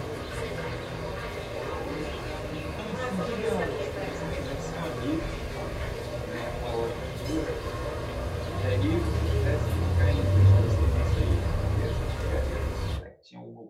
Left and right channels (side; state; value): both; identical; correlation 1.00